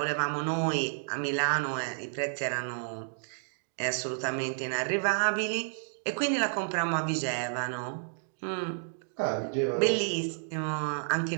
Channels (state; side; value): silent; left; digital silence